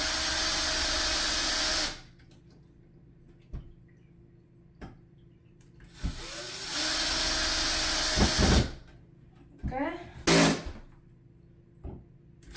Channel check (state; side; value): identical; both; correlation 1.00